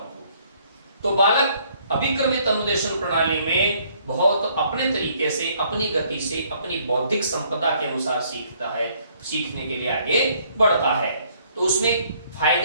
होगी। तो बालक अभिक्रमित अनुदेशन प्रणाली में बहुत अपने तरीके से, अपनी गति से, अपनी बौद्धिक संपदा के अनुसार सीखता है, सीखने के लिए आगे बढ़ता है। तो उसमें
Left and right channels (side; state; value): both; inverted; correlation -0.64